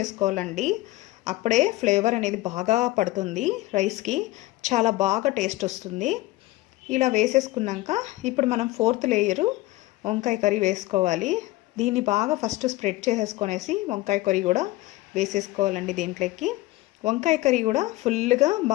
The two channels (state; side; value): quieter; right; 18.3 dB